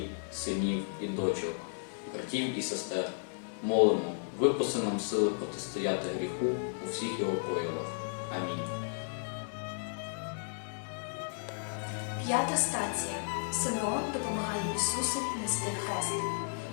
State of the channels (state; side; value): silent; right; digital silence